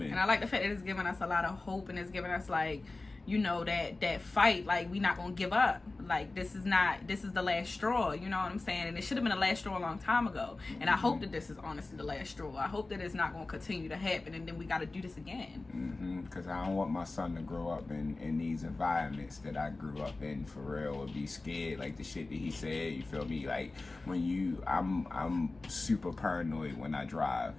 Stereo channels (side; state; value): right; quieter; 3.3 dB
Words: And I like the fact that it's giving us a lot of hope and it's giving us like, you know, that fight, like, we not gonna give up. Like, this is the last straw, you know what I'm saying? And it should have been the last straw a long time ago. And I hope that this is honestly the last straw. I hope that it's not gonna continue to happen and then we gotta do this again. Because I don't want my son to grow up in these environments that I grew up in for real, or be scared like the shit that he said. You feel me? Like, I'm super paranoid when I drive.